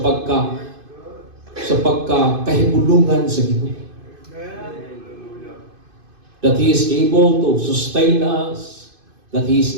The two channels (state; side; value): late; left; 2.5 ms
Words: pagkahibulungan sa Ginoo. That He is able to sustain us, that He is